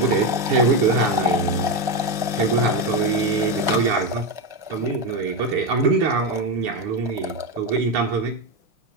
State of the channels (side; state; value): left; late; 5.4 ms